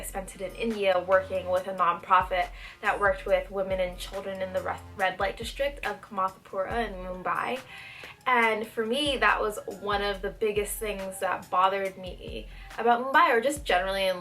spent it in India working with a nonprofit that worked with women and children in the red light district of Kamathapura in Mumbai. And for me, that was one of the biggest things that bothered me about Mumbai, or just generally in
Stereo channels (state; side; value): identical; both; correlation 1.00